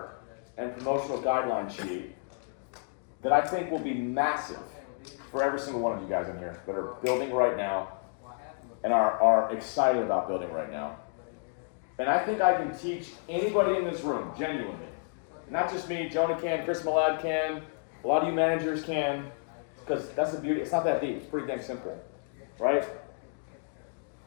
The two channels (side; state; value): right; silent; 57 dB below the other